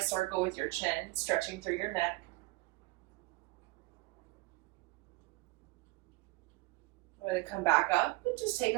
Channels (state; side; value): quieter; left; 22.5 dB